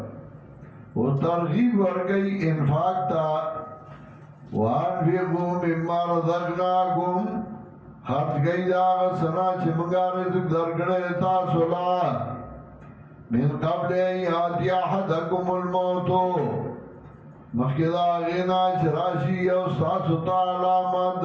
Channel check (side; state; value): both; identical; correlation 1.00